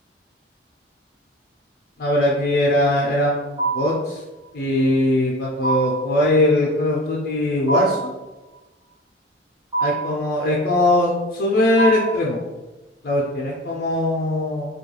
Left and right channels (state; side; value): normal; both; correlation 0.36